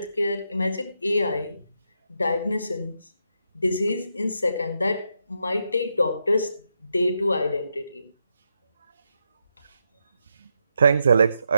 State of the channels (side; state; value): both; inverted; correlation -0.83